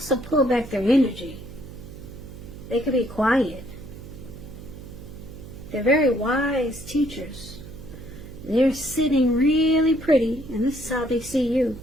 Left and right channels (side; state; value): right; noise; hum, 14 dB below the sound